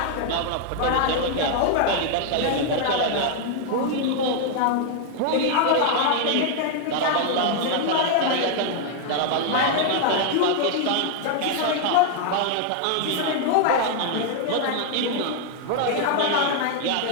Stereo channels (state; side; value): different; both; correlation 0.00